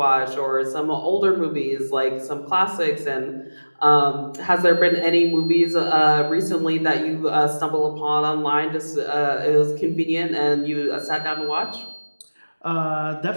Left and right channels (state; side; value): inverted; both; correlation -1.00